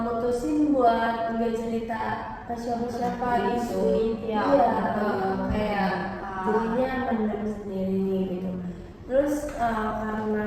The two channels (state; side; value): identical; both; correlation 1.00